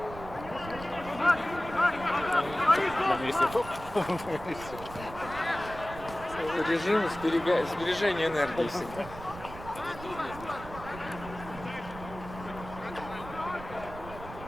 На месте топ. Режим сбережения энергии всегда.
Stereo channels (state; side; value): noise; right; rumble, 13 dB below the sound